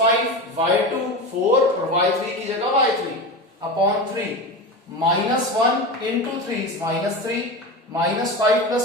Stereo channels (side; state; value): both; normal; correlation 0.25